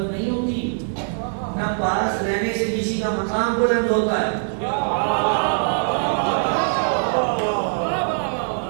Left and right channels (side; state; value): left; silent; 64 dB below the other